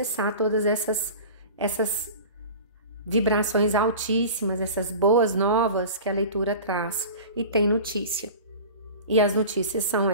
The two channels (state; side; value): inverted; both; correlation -0.37